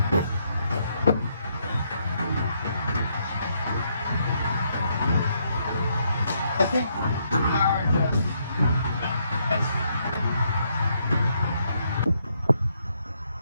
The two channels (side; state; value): both; inverted; correlation -0.74